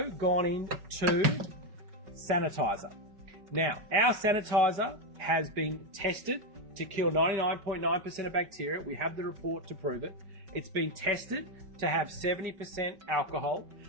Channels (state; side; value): late; left; 5.3 ms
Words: gone into sanitizer. Now, our sanitizer has been tested to kill 99.9% of bacteria. We have the report to prove it. It's been tested to have 70% alcohol,